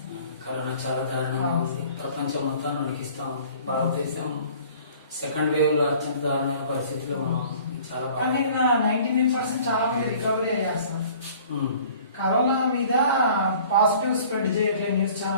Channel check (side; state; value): both; inverted; correlation -0.51